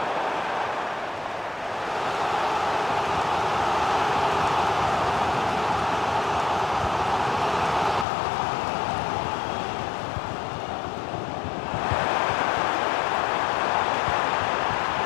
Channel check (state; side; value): drops out; right; at 8.1 s